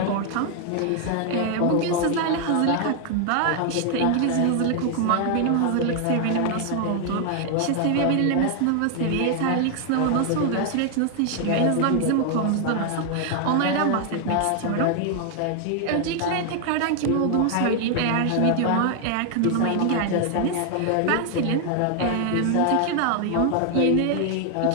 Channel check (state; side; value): different; both; correlation 0.00